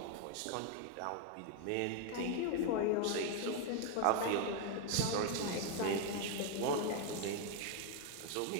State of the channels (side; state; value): both; different; correlation 0.01